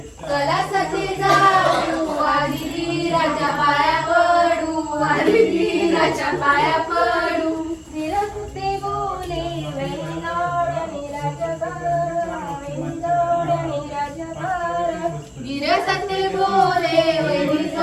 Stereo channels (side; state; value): both; identical; correlation 1.00